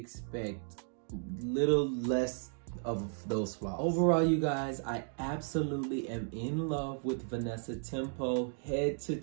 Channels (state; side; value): silent; left; 55 dB below the other